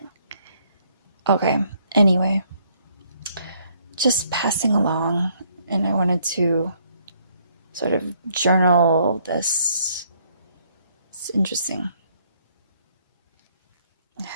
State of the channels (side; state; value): both; inverted; correlation -0.67